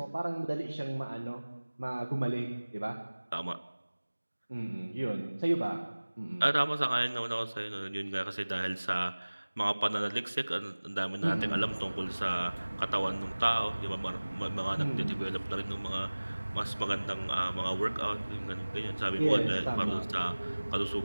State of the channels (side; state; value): both; inverted; correlation -1.00